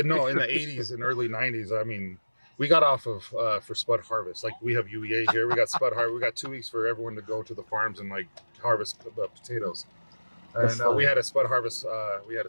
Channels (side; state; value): both; inverted; correlation -1.00